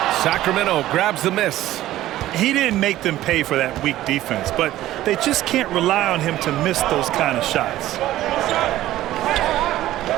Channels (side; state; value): left; quieter; 14.6 dB